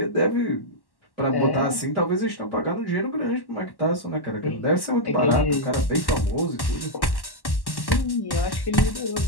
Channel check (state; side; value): late; right; 1.1 ms